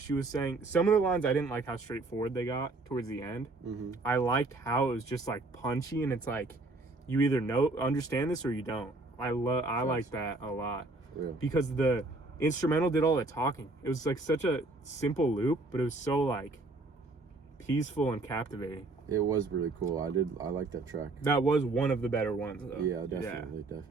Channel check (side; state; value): left; quieter; 3.1 dB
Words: she was saying... Some of the lines, I didn't like how straightforward they got towards the end. Mm-hmm. I liked how it was just, like, punchy, and it's like, you either understand this or you don't. I like that a lot. Yeah. Because the instrumental did all the talking. It was, like, such a simple loop, but it was so, like, peaceful and captivating. It was really cool. I like that track. That was one of the better ones, though. Yeah,